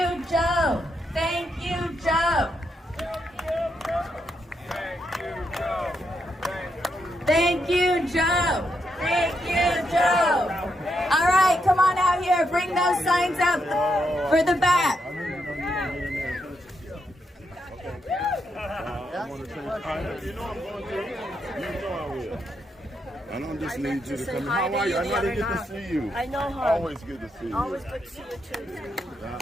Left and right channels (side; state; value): both; normal; correlation 0.81